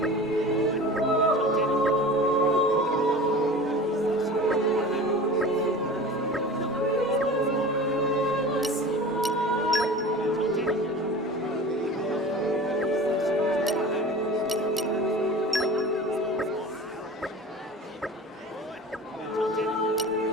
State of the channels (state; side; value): normal; both; correlation 0.37